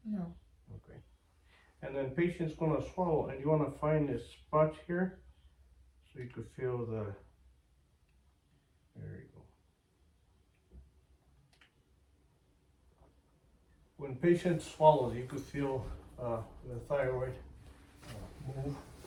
No. Okay. And then patient's gonna swallow, and you wanna find this spot here, so you could feel the, there you go. When patient swallows, you could feel the thyroid move.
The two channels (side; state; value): both; identical; correlation 1.00